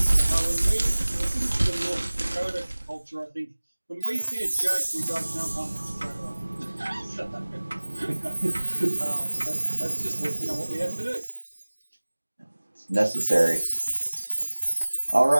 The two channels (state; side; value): inverted; both; correlation -1.00